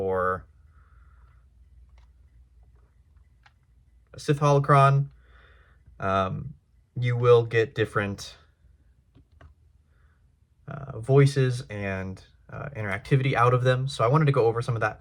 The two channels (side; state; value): both; identical; correlation 1.00